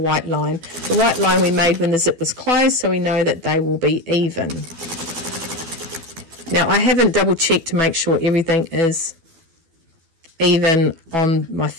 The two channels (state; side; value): late; left; 12 ms